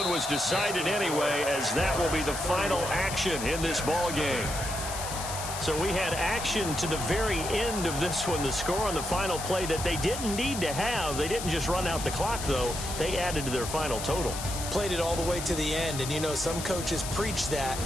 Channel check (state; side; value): noise; left; hiss, 7 dB below the sound